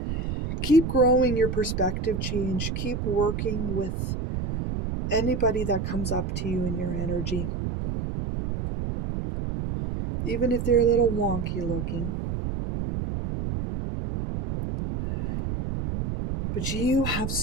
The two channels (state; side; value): noise; right; rumble, 3 dB below the sound